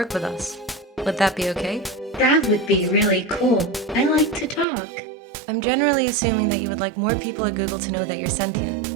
with us. Would that be okay? That would be really cool. I like to talk. I'm generally assuming that you would like more people at Google to know that you're sentient.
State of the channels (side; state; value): left; drops out; at 4.7 s